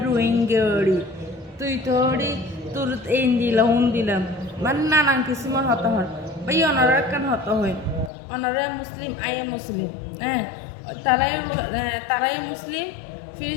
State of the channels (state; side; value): drops out; right; at 8.1 s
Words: রোহিঙ্গি তুই তো ওরি তোর এই দিলাম উন দিলাম মানে নানান কিছু মন হত হয় বা অনারা কেন হত হয়। অনারা মুসলিম আইএ মুসলিম, তারাই মুসলিম।